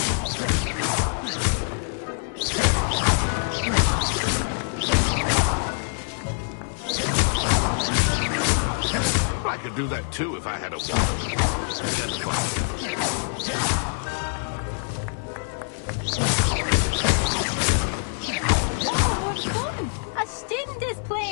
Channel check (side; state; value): right; silent; 62 dB below the other